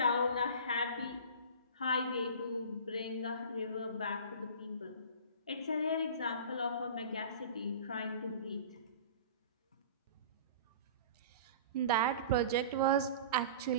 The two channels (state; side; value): inverted; both; correlation -0.38